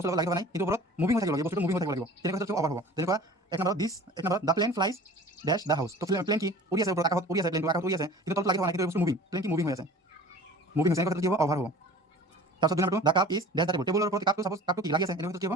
বস্তু লাগি থকা নাই, কিন্তু ওপৰত মুভিং হৈ থাকিব লাগিব, বস্তুটো মুভিং হৈ থাকিব লাগিব, তেনেকুৱা ক্ষেত্ৰত অভাৰ হ'ব। যেনেকুৱা এক নম্বৰত the plane flies dash the house. তো প্লেন কি উৰি আছে, ওপৰত আকাশত উৰি আছে, প্লেনটো আকাশত উৰি আছে, কিন্তু তলত লাগি থকা নাই, কিন্তু বস্তু মুভিং, প্লেন কি মুভিং হৈ আছে, মুভিং হৈছে, এনেকুৱা ক্ষেত্ৰত কি হ'ব, অভাৰ হ'ব। তাৰপিছত 2 নম্বৰটো the cup is dash the table, টেবুলৰ ওপৰত কাপটো কি লাগি আছে, এনেকুৱা ক্ষেত্ৰত কি হ'ব,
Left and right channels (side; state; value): both; normal; correlation 0.43